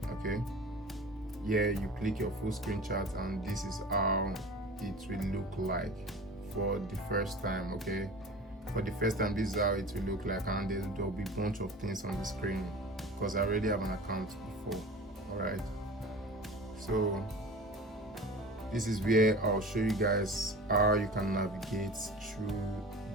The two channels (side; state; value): both; normal; correlation 0.37